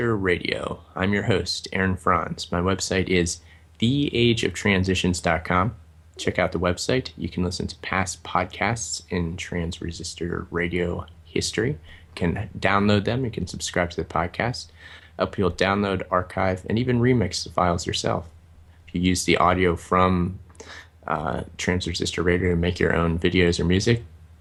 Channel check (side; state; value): both; identical; correlation 1.00